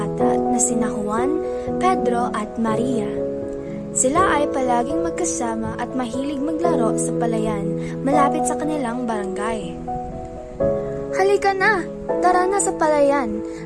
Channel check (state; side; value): identical; both; correlation 1.00